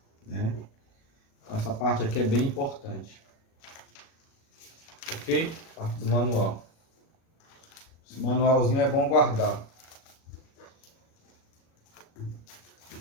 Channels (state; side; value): late; right; 37 ms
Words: né? Então, essa parte aqui é bem importante. Ok? Parte do manual. Esse manualzinho é bom guardar.